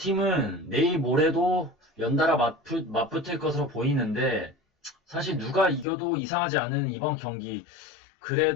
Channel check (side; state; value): right; drops out; at 5.9 s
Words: 내일 모레도 연달아 맞붙을 것으로 보이는데 사실 누가 이겨도 이상하지 않은 이번 경기,